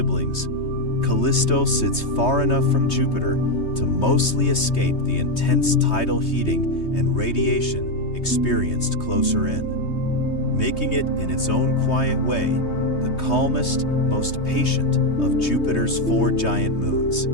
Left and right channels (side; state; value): right; late; 3.2 ms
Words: Callisto sits far enough from Jupiter to mostly escape the intense tidal heating and radiation experienced closer in, making it, in its own quiet way, the calmest, most patient of Jupiter's four giant moons,